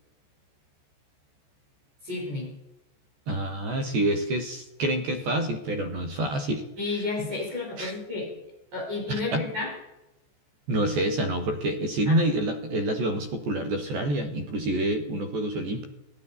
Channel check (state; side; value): late; left; 14 ms